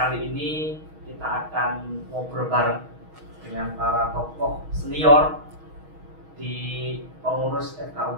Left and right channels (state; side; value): late; left; 6.3 ms